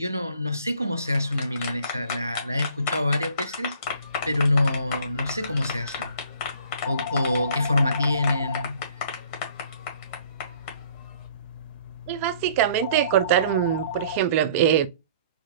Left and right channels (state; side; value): inverted; both; correlation -0.55